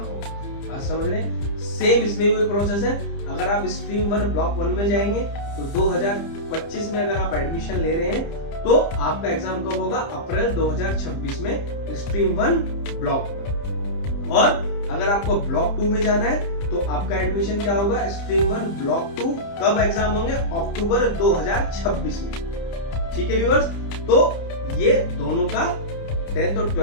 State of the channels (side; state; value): right; late; 30 ms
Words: बात समझ रहे हैं? सेम इसमें भी प्रोसेस है। अगर आप स्ट्रीम 1 ब्लॉक 1 में जाएंगे तो 2025 में अगर आप एडमिशन ले रहे हैं तो आपका एग्जाम कब होगा? अप्रैल 2026 में स्ट्रीम 1 ब्लॉक 1। और अगर आपको ब्लॉक 2 में जाना है तो आपका एडमिशन क्या होगा, स्ट्रीम 1 ब्लॉक 2 कब एग्जाम होंगे, अक्टूबर 2026 में। ठीक है व्यूअर्स, तो ये दोनों का 10th और